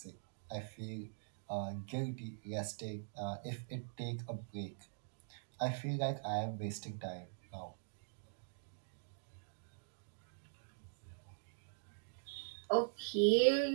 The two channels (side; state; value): left; silent; digital silence